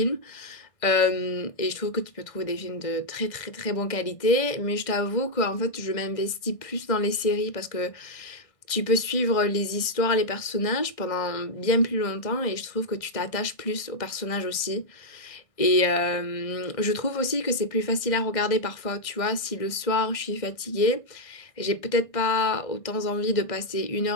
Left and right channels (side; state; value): right; late; 1.6 ms